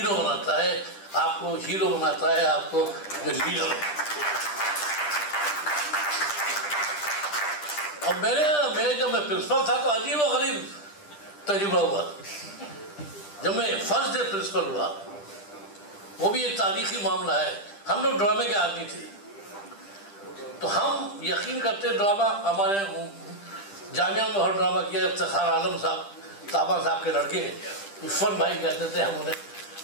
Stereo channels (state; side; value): late; right; 10 ms